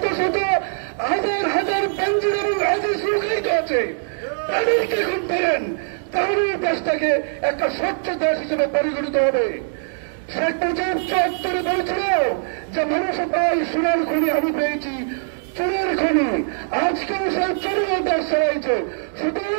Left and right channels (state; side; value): silent; left; digital silence